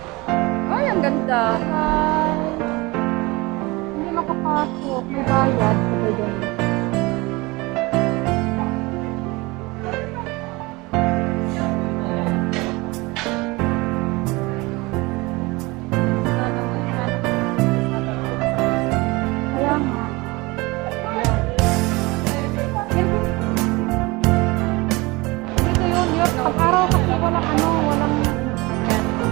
Ay, ang ganda. Ay, hindi makapasok. May bayad. Sabay doon. Kaya nga. Dito yun, yun. Pag-araw kasi walang ano, walang...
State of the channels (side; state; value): left; quieter; 23.6 dB